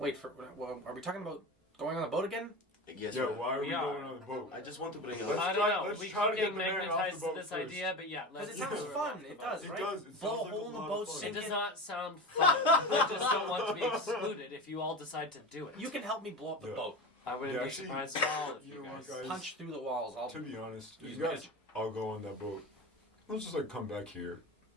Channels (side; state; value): both; normal; correlation 0.28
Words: well, are we talking about going on the boat again? Yes, yeah, but why are we We are. going on the boat? I just want to bring Let's up. I try- don't know. let's We try to keep get getting the man off the magnetized to boat this first. idea, but yeah, Because let's it sounds do fun. It does, It right? does. It Blow a sounds like hole a in the lot boat, of fun. It sink does it. not sound fun. I just don't want to be excluded if you all decide to do it. You can help me blow up the Yeah. boat. I wouldn't Yeah, be actually, surprised at all if you you know what, guys. guys? Punch through the walls. I'll To be honest, use you guys magic. all go on that boat. Let's just like come back here,